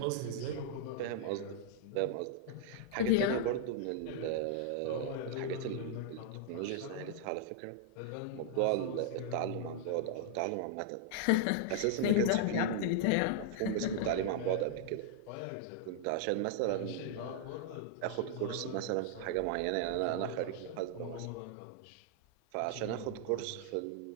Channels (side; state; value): both; different; correlation -0.01